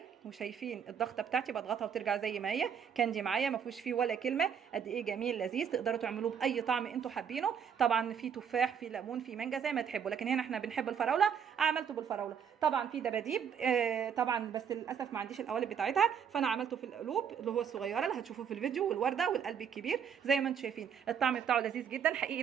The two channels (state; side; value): quieter; left; 7.6 dB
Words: وشايفين الضغطه بتاعتي بضغطها وترجع زي ما هي. كاندي معايا ما فيهوش فيه ولا كلمه. قد ايه جميل لذيذ، تقدروا تعملوه باي طعم انتوا حابينه. طبعا في تفاح، في ليمون، في مانجا، زي ما تحبوا، لكن هنا احنا بنحب الفراوله. عملته بالفراوله. طبعا في دباديب طبعا، بس للاسف ما عنديش القوالب بتاعتها، فانا عملته في القلوب اللي هو الصغيره اللي هتشوفوه في الفيديو، والورده والقلب الكبير. زي ما انتم شايفين الطعم بتاعه لذيذ جدا حقيقي.